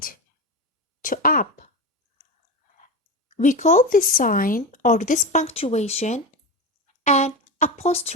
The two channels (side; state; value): both; normal; correlation 0.20